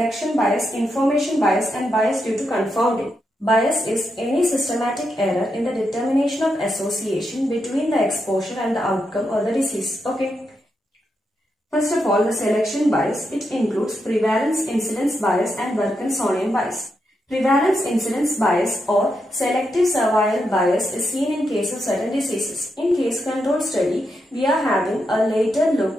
bias, information bias, and bias due to confounding. Bias is any systematic error in the determination of association between the exposure and the outcome or the disease. Okay. First of all, the selection bias, it includes prevalence incidence bias and Wilkinsonian bias. Prevalence incidence bias or selective survival bias is seen in case of certain diseases. In case control study, we are having a later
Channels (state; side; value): normal; both; correlation 0.84